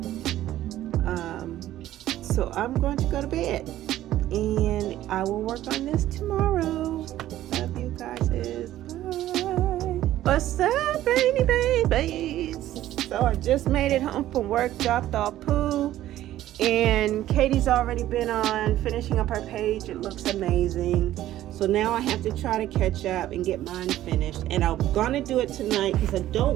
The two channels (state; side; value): quieter; left; 13.7 dB